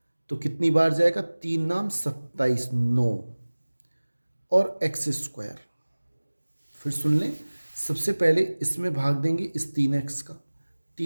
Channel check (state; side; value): inverted; both; correlation -1.00